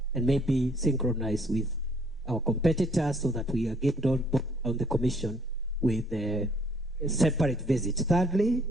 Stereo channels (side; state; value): both; normal; correlation 0.63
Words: and maybe synchronize with our competitors, so that we are getting on the commission with a separate visit. Thirdly,